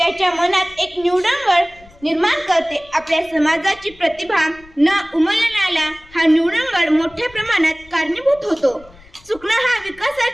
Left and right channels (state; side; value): noise; left; rumble, 25 dB below the sound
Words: मनात एक न्यूनगंड निर्माण करते. आपल्या समाजाची प्रतिभा न उमलण्याला हा न्यूनगंड मोठ्या प्रमाणात कारणीभूत होतो. चुकणं हा